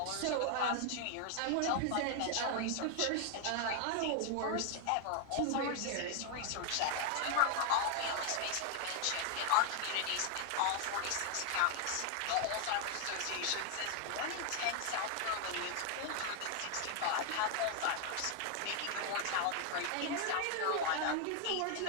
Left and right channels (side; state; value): both; different; correlation 0.00